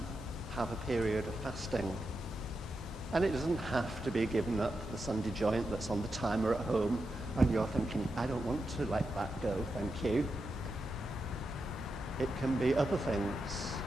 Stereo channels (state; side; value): normal; both; correlation 0.87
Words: have a period of fasting. And it doesn't have to be giving up the Sunday joint that's on the timer at home and you're thinking, I don't want to let that go, thank you. It can be other things.